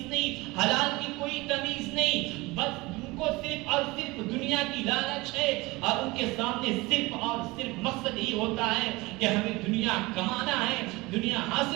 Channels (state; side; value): quieter; left; 22.3 dB